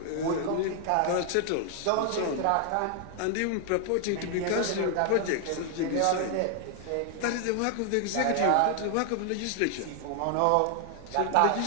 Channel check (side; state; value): both; different; correlation 0.00